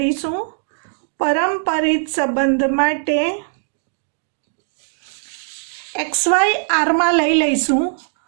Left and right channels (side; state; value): left; silent; digital silence